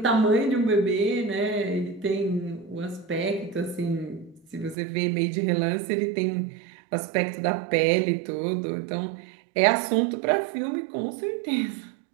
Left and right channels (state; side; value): drops out; left; at 4.8 s